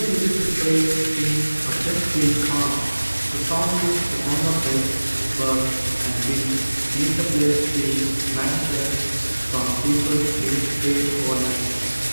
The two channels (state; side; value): inverted; both; correlation -1.00